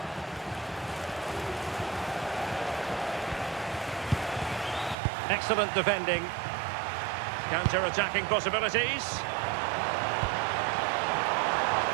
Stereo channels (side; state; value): left; drops out; at 5.0 s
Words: Excellent defending. Counter-attacking possibilities.